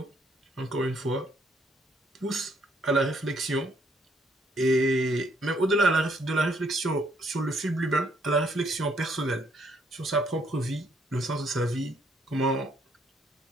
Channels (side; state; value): both; normal; correlation 0.69